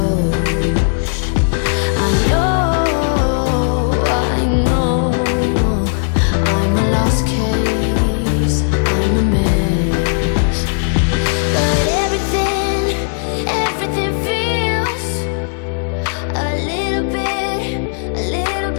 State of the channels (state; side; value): silent; right; digital silence